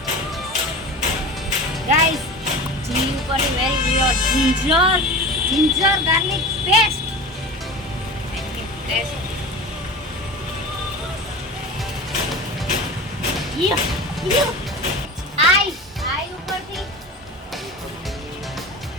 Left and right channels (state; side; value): normal; both; correlation 0.32